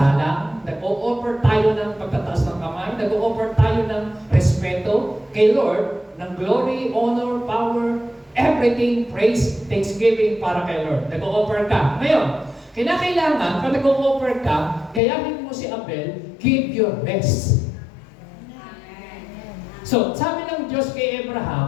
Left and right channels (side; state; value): right; drops out; at 15.0 s